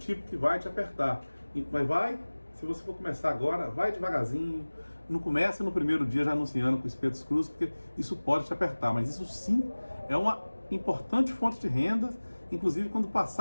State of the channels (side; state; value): both; inverted; correlation -1.00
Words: que vai te apertar. Mas se você for começar agora, vai devagarzinho. Não comece no primeiro dia já anunciando com espetos crus, porque isso pode te apertar. Mas isso sim é uma importante fonte de renda, inclusive quando